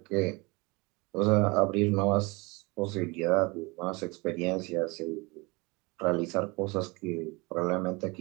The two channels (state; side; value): quieter; left; 26.0 dB